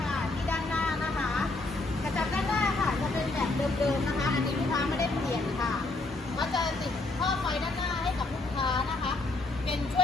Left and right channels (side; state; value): right; quieter; 3.1 dB